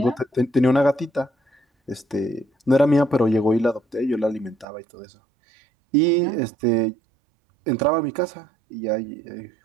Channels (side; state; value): left; drops out; at 4.7 s